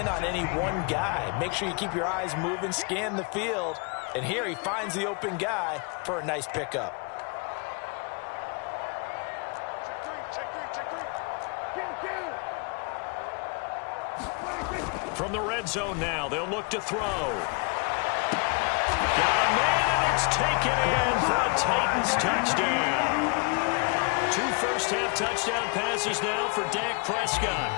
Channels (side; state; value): right; quieter; 33.2 dB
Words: on any one guy. Make sure you keep your eyes moving, scan the field. And here he finds the open guy for a nice pickup. From the red zone now, they'll look to throw. Got a man, and it's taken in for a Titans touchdown. 2 first-half touchdown passes now for Dak Prescott.